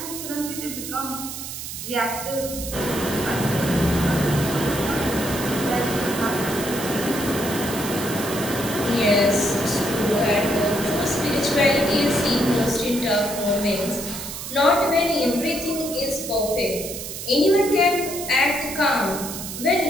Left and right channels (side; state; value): right; noise; hiss, 8 dB below the sound